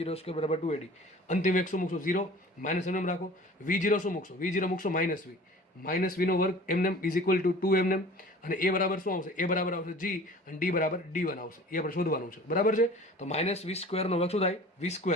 = 2ad. અંતિમ વેગ શું મૂકશું, 0, માઇનસ એમ રાખો. v0 શું મૂકશો, v0 મૂકશો -v, -v² એમને = 2 એમને, અને a બરાબર શું આવશે, a બરાબર આવશે g, અને d બરાબર d1 આવશે. એ આપણે શોધવાનું છે, બરાબર છે. તો -v² નો વર્ગ શું થાય,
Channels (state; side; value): normal; both; correlation 0.44